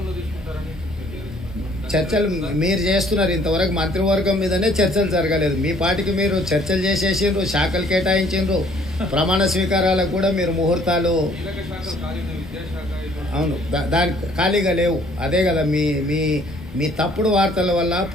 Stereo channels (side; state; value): both; normal; correlation 0.60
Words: చర్చలు మీరు చేస్తున్నారు, ఇంతవరకు మంత్రివర్గం మీదనే చర్చలు జరగలేదు. మీ పార్టీకి మీరు చర్చలు చేసేసిండ్రు, శాఖలు కేటాయించిండ్రు, ప్రమాణ స్వీకారాలకు కూడా మీరు ముహూర్తాలు అవును దాని ఖాళీగా లేవు. అదే కదా మీ మీ మీ తప్పుడు వార్తల వల్ల